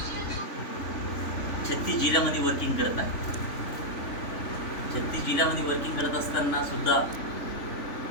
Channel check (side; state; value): right; late; 3.5 ms